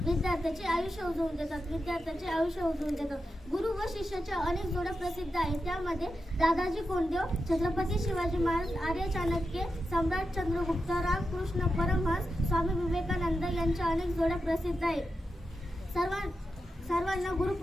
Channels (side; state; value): both; normal; correlation 0.89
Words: विद्यार्थ्याचे आयुष्य उजवून देतात। गुरु व शिष्याच्या अनेक जोड्या प्रसिद्ध आहेत, त्यामध्ये दादाजी कोंडदेव, छत्रपती शिवाजी महाराज, आर्य चाणक्य, सम्राट चंद्रगुप्त, रामकृष्ण परमहंस, स्वामी विवेकानंद यांच्या अनेक जोड्या प्रसिद्ध आहेत। सर्वांना